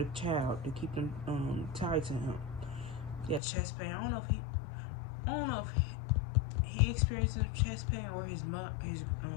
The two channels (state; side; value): drops out; right; at 3.4 s